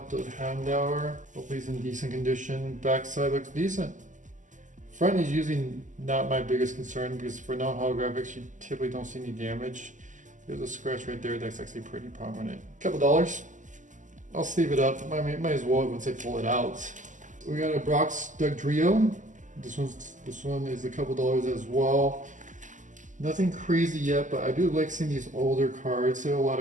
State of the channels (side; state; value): left; late; 0.37 ms